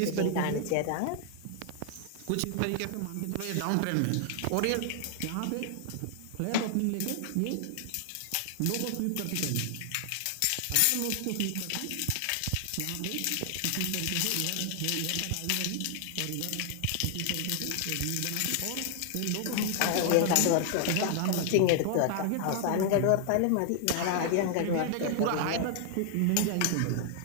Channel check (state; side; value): different; both; correlation 0.00